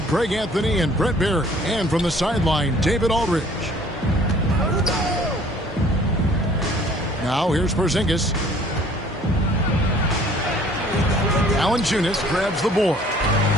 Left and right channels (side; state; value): both; normal; correlation 0.55